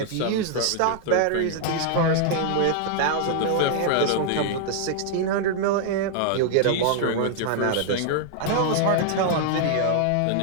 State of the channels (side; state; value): both; different; correlation 0.00